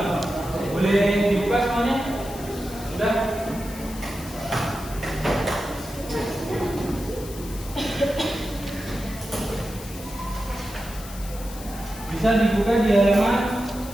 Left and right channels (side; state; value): left; noise; hiss, 15 dB below the sound